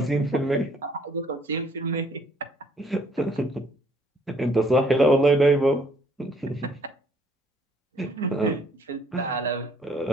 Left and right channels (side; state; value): both; normal; correlation 0.63